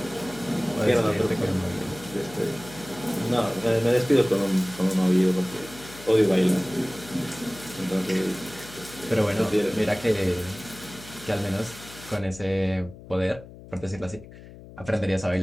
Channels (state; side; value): noise; left; hum, 17 dB below the sound